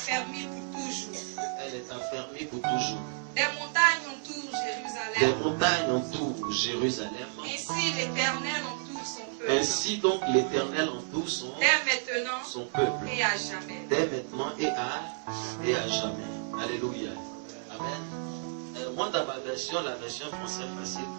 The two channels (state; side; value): silent; left; 57 dB below the other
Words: pour toujours. Elle est affermie pour toujours. Des montagnes entourent Jérusalem. Des montagnes entourent Jérusalem. Ainsi l'Éternel entoure son peuple. Ainsi donc l'Éternel entoure son peuple. Et à jamais. Dès maintenant et à jamais. Alléluia. Amen. Moi dans ma version, la version française facile